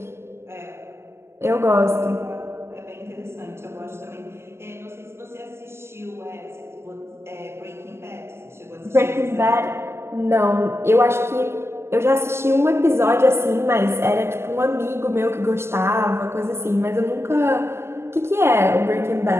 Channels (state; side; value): late; left; 0.12 ms